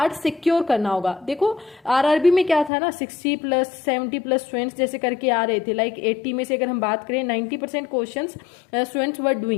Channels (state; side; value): drops out; right; at 2.7 s